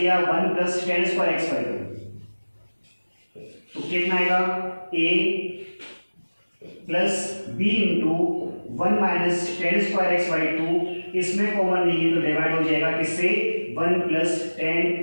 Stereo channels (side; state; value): both; inverted; correlation -1.00